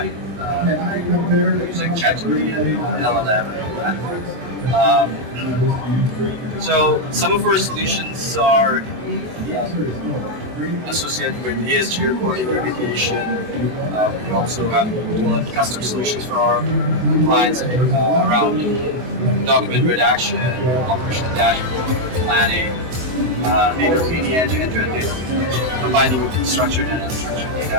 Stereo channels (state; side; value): late; left; 24 ms